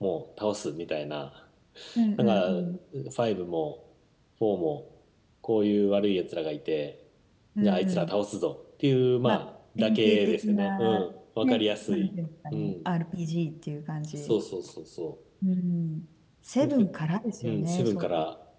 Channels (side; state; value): both; identical; correlation 1.00